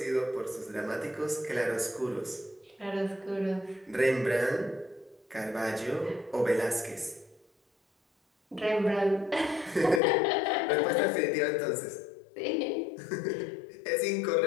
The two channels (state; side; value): drops out; right; at 10.0 s